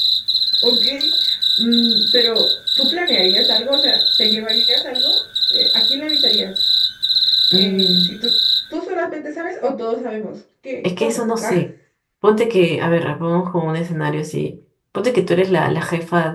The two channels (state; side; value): identical; both; correlation 1.00